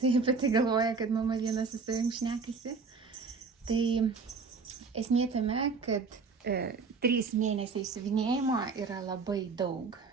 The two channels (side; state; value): left; quieter; 4.8 dB